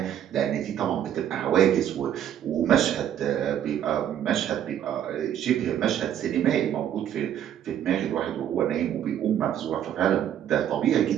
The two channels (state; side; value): quieter; left; 10.3 dB